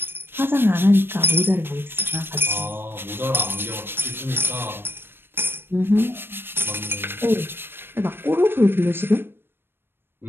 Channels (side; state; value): left; late; 0.10 ms